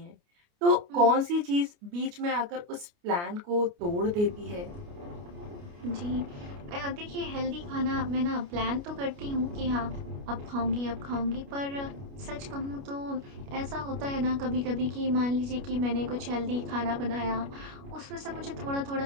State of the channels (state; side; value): late; left; 29 ms